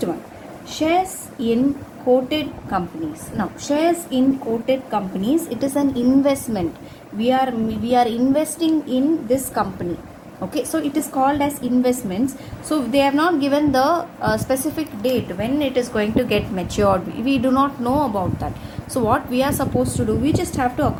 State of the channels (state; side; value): identical; both; correlation 1.00